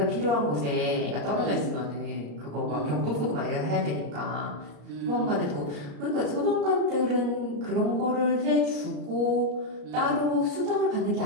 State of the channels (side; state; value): left; late; 34 ms